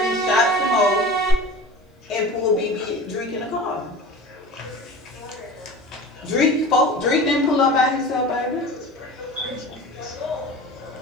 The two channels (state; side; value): normal; both; correlation 0.36